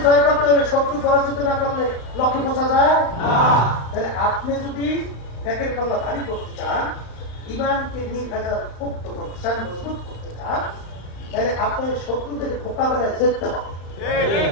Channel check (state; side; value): late; right; 35 ms